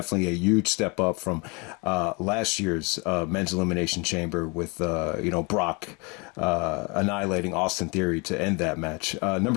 a huge step up from last year's men's Elimination Chamber with you know, Brock annihilating Austin Theory to end that match.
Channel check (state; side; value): quieter; right; 30.0 dB